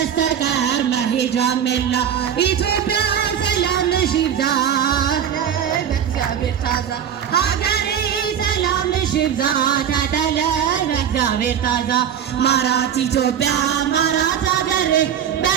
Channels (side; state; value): left; quieter; 8.9 dB